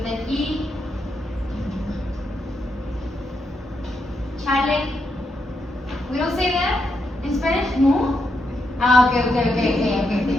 an E. Chale. We don't say that in Spanish? No? Okay.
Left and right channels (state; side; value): normal; both; correlation 0.82